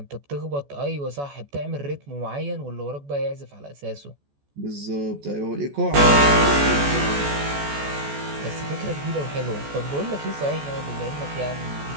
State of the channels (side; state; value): left; late; 14 ms